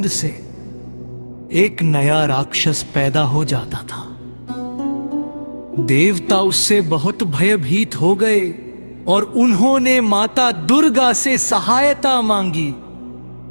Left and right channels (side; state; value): both; inverted; correlation -1.00